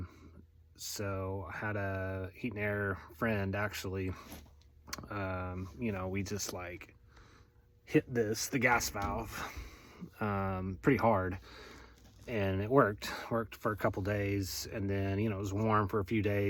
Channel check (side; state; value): both; identical; correlation 1.00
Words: So I had a heat and air friend actually. We just like hit the gas valve pretty hard, and it worked for a couple days, and then it was warm for a few